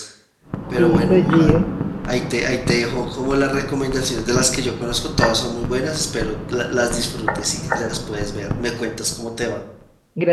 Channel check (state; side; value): identical; both; correlation 1.00